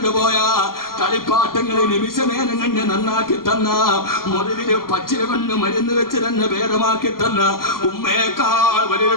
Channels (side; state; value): right; late; 0.92 ms